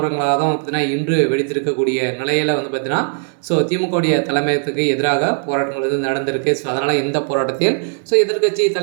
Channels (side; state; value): left; silent; 57 dB below the other